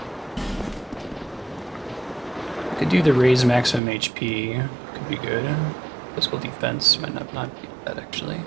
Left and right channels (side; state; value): left; drops out; at 3.8 s